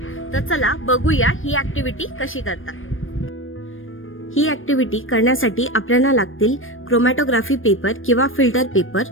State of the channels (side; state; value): right; late; 0.59 ms